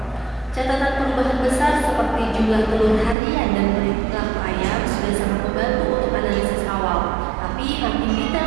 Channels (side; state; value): left; drops out; at 3.2 s